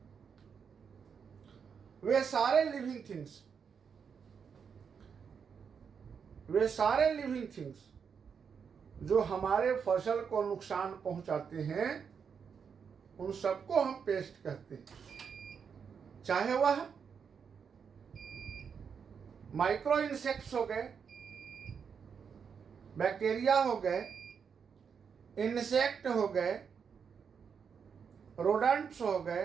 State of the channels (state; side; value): quieter; left; 6.6 dB